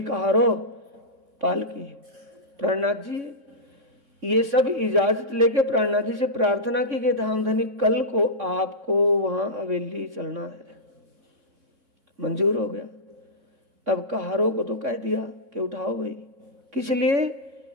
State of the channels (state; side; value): late; left; 3.6 ms